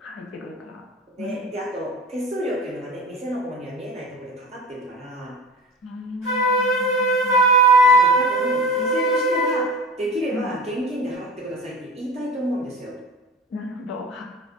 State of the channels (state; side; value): normal; both; correlation 0.35